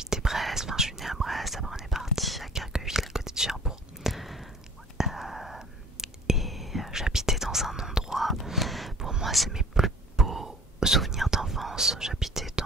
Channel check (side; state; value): both; normal; correlation 0.48